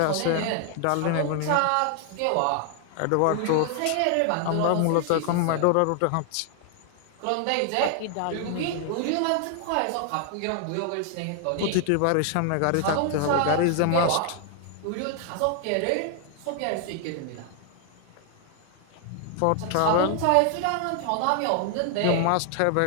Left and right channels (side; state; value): both; different; correlation 0.00